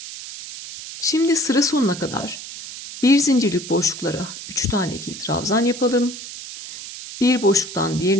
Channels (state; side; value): noise; right; hiss, 11 dB below the sound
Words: Şimdi sıra sonuna kadar bir zincirlik boşluklara 3 tane ikili trabzan yapalım. Bir boşluktan